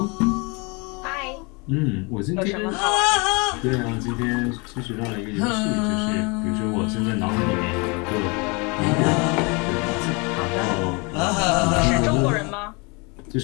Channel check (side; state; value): right; quieter; 30.0 dB